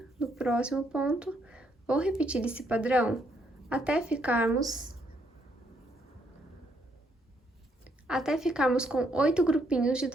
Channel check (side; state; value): both; normal; correlation 0.73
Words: no próximo ponto, vou repetir esse padrão até ficarmos com 8 grupinhos de